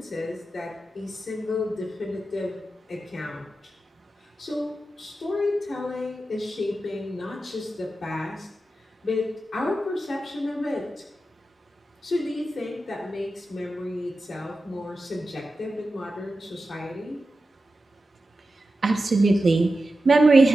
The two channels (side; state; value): both; normal; correlation 0.92